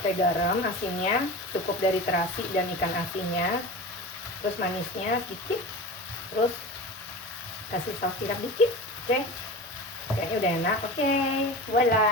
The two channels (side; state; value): both; normal; correlation 0.31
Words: garam, asinnya cukup dari terasi dan ikan asinnya. Terus manisnya sedikit. Terus kasih saus tiram dikit. Oke. Kayaknya udah enak. Oke,